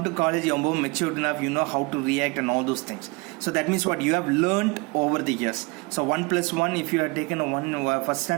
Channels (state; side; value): quieter; left; 26.6 dB